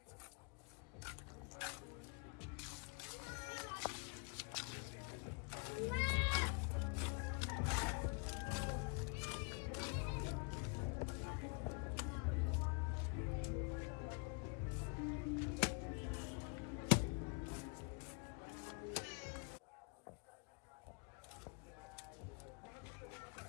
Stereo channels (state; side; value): quieter; right; 34.1 dB